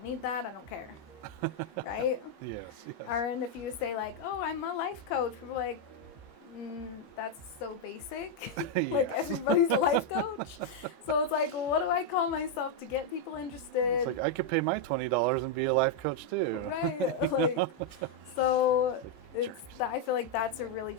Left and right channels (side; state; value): right; late; 14 ms